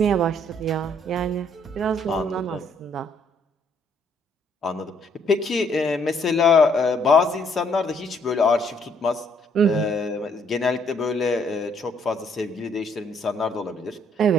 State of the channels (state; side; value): normal; both; correlation 0.67